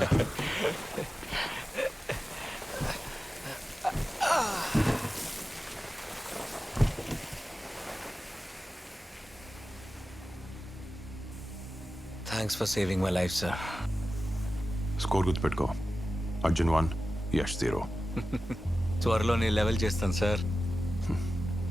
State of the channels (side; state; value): both; normal; correlation 0.94